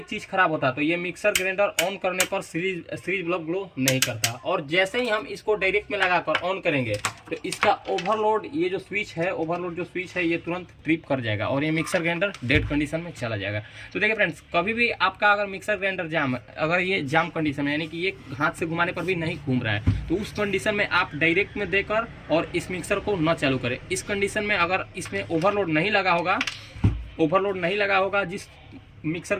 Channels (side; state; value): both; identical; correlation 1.00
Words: चीज़ खराब होता तो ये मिक्सर ग्राइंडर ऑन करने पर सीरीज ब्लॉक ग्लो नहीं करता। और जैसे ही हम इसको डायरेक्ट में लगाकर ऑन करेंगे तो इसका ओवरलोड, ये जो स्विच है, ओवरलोड जो स्विच है, ये तुरंत ट्रिप कर जाएगा और ये मिक्सर ग्राइंडर डेड कंडीशन में चला जाएगा। तो देखिए फ्रेंड्स, कभी भी आपका अगर मिक्सर ग्राइंडर जाम, अगर ये जाम कंडीशन में, यानी कि ये हाथ से घुमाने पर भी नहीं घूम रहा है, तो उस कंडीशन में आप डायरेक्ट में देकर और इस मिक्सर को न चालू करें। इस कंडीशन में अगर इसमें ओवरलोड नहीं लगा होगा, जिस मिक्सर